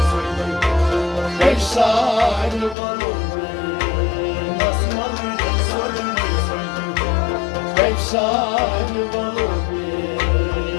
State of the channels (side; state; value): right; drops out; at 2.8 s